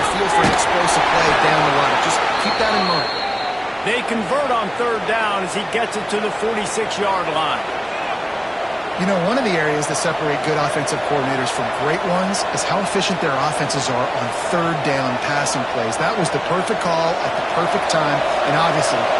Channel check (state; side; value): identical; both; correlation 1.00